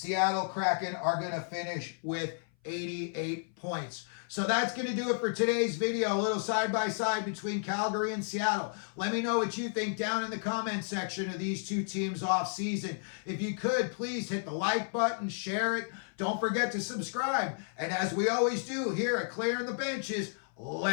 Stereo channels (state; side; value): silent; right; 56 dB below the other